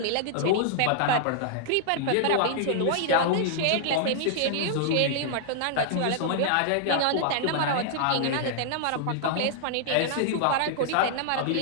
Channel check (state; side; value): different; both; correlation -0.01